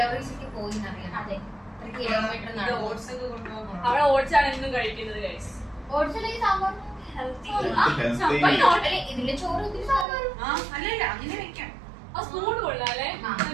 ഒക്കെ പോയി എന്നറിയാം. അതെ. എത്ര കിലോമീറ്റർ ഇത് നടന്നു. oats ഒക്കെ കൊണ്ടുപോകാൻ. അവിടെ ഓട്സ് ആണ് എന്നും കഴിക്കുന്നത് ഗൈസ്. ഓട്സ് അല്ലെങ്കിൽ സാമ്പാർ. ഇതിന്റെ ചോറ് ഇതിന്റെ സാമ്പാർ. അല്ലല്ല, അങ്ങനെ വെക്കാം. ആ സ്പൂൺ കൊള്ളാല്ലേ?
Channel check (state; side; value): drops out; left; at 10.1 s